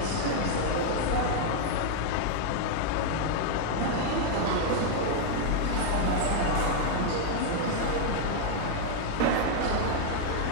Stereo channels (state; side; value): different; both; correlation 0.00